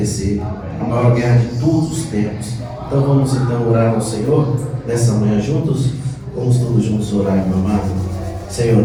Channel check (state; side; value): identical; both; correlation 1.00